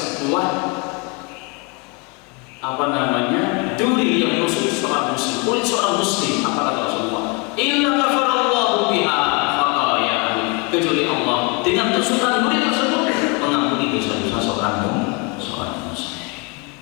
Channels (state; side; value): quieter; right; 29.6 dB